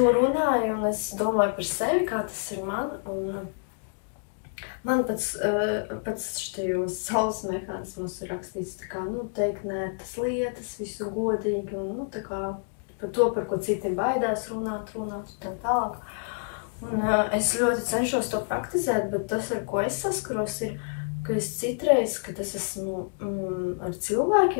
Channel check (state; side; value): silent; right; digital silence